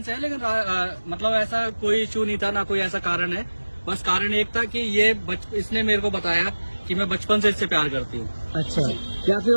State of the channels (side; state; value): both; inverted; correlation -1.00